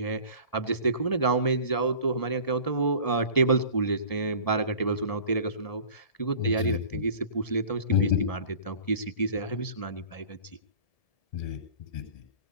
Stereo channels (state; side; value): late; right; 1.7 ms